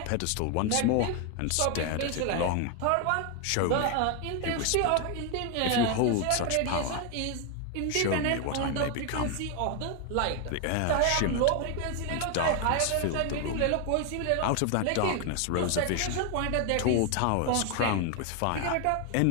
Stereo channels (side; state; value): both; different; correlation 0.01